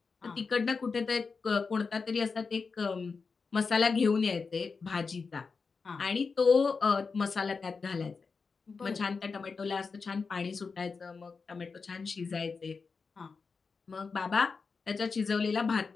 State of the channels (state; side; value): quieter; right; 4.8 dB